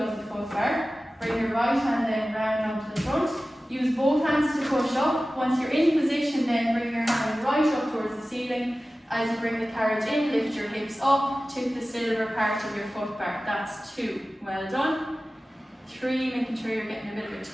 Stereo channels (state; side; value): normal; both; correlation 0.96